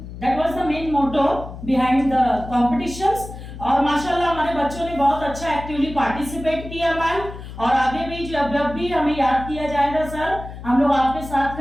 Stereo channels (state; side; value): noise; left; hum, 12 dB below the sound